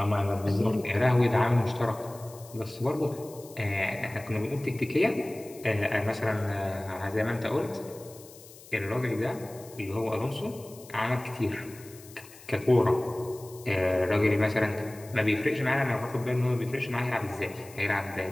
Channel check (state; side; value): noise; left; hiss, 20 dB below the sound